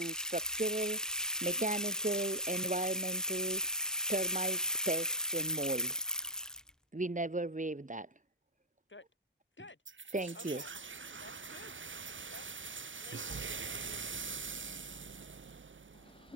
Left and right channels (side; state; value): both; normal; correlation -0.04